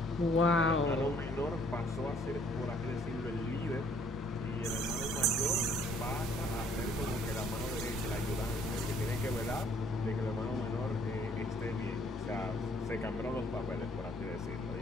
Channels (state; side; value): normal; both; correlation 0.61